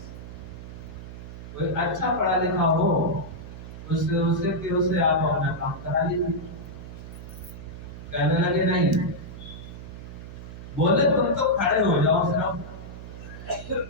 कोई अच्छा पढ़ा लिखा हो उससे आप अपना काम करा लीजिए। कहने लगे नहीं, बोले तुम तो खड़े हो जाओ,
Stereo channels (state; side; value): noise; right; hum, 12 dB below the sound